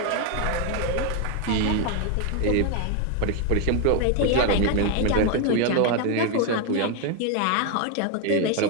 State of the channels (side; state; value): both; different; correlation 0.01